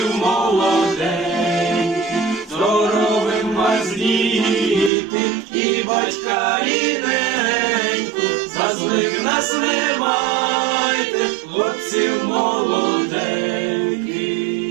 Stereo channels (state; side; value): drops out; left; at 4.9 s